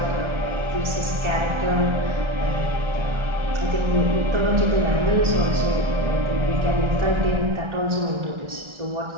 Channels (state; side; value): late; left; 1.3 ms